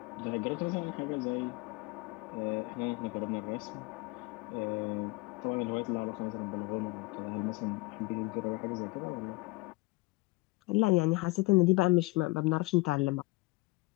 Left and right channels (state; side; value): quieter; right; 23.7 dB